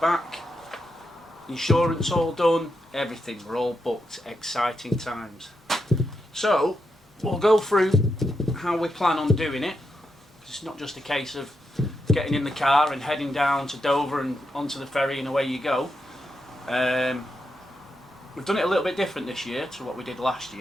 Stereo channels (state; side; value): normal; both; correlation 0.84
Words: insurance all done, everything, we're all booked. Exciting times. So we'll go through how we plan on doing it. It's not just a case of getting in the car and heading down to Dover and onto the ferry and away you go. We've done it a little bit different this year to what we did last